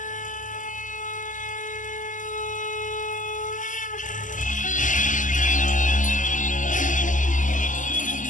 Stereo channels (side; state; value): right; late; 0.37 ms